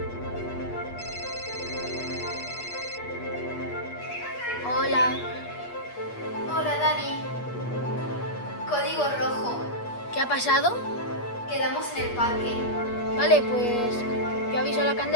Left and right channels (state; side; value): late; right; 8.4 ms